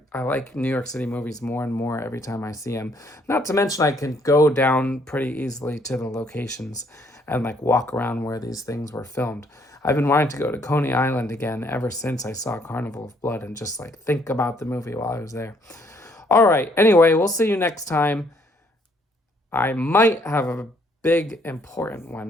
New York City movies more and more every time I see them. Not to mention I can go down pretty easily to the locations and like walk around where these things were filmed. I've been wanting to go to Coney Island again ever since I saw Carnival of Blood and just like think about the movie while I was there. All right, anyway, we'll see you next time. I might have a big important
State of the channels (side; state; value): both; normal; correlation 0.67